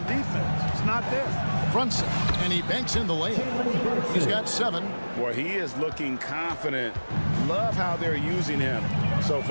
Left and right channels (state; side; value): inverted; both; correlation -1.00